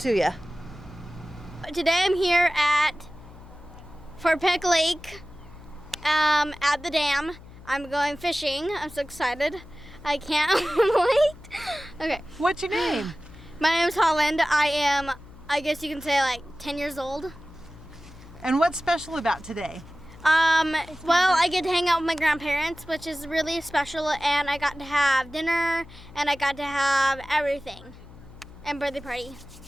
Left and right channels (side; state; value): left; noise; hum, 19 dB below the sound